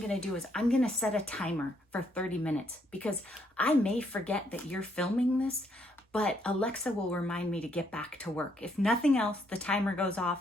to do is I'm going to set a timer for 30 minutes because I may forget that you're filming this, but Alexa will remind me to get back to work. If nothing else, the timer goes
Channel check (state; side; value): normal; both; correlation 0.72